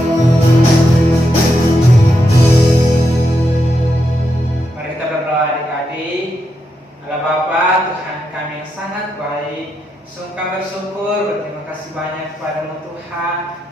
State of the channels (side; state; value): both; normal; correlation 0.83